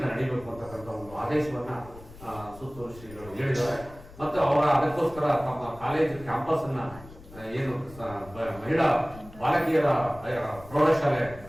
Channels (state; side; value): noise; left; rumble, 18 dB below the sound